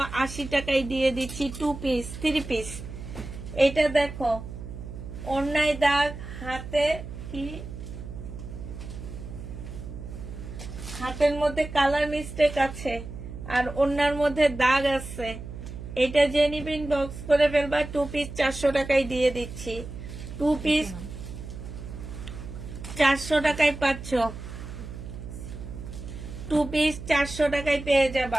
টাকায় দিয়ে দিচ্ছি। 2 পিস 3 পিস। এটা দেখো ওন্নায় দাগ, হাতে কি, হাতের মধ্যে কালার মিস্টেক আছে আর ওন্নার মধ্যে দাগ আছে। এটা যে নিবে ইনবক্স করে ফেলবা। 2 পিস 400 টাকায় দিয়ে দিচ্ছি। 2 পিস 400 টাকায় পাচ্ছ। 2 পিস 400 টাকায় পেয়ে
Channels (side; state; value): right; noise; hum, 10 dB below the sound